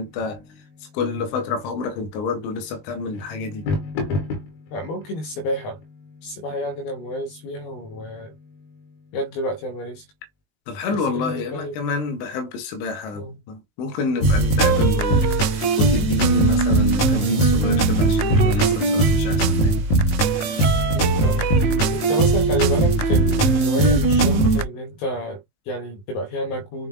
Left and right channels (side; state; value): right; late; 19 ms